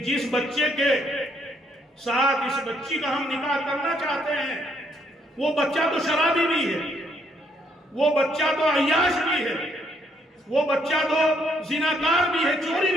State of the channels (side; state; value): both; normal; correlation 0.71